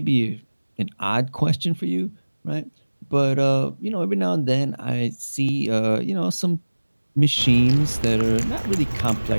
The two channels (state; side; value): inverted; both; correlation -1.00